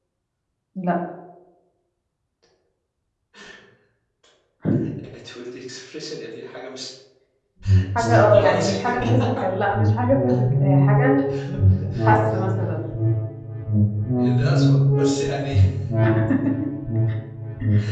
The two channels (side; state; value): both; identical; correlation 1.00